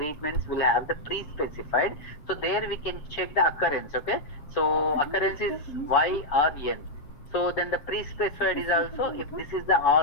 will have the pre-specified, so there we can check the occurrence, okay. So occurrence is Y or N. So then the pre-specified is also, if this is the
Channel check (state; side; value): late; right; 7.0 ms